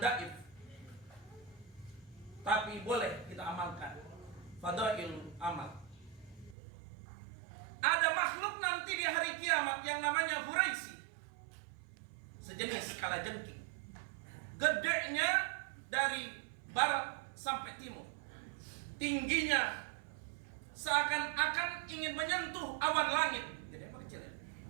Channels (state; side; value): drops out; left; at 6.6 s